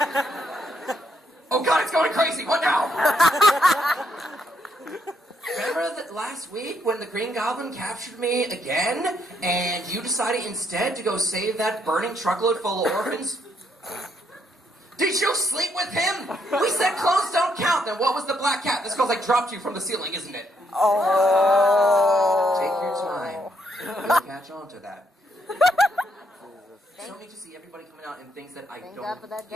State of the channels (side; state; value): both; normal; correlation 0.74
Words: Oh God, it's going crazy! What now? Remember that last week when the Green Goblin captured me again, and you decided instead to go save that burning truckload full of orphans? Did you sleep with him? We said clothes don't count. Then what was the black cat? This girl's like dropped you from the ceiling, isn't it? Oh. Take your time. You'll catch on to that. So neat to see everybody coming out in things that I Thank don't God for that